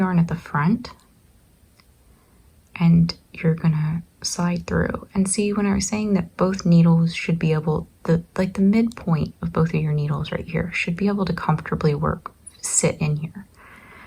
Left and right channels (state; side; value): identical; both; correlation 1.00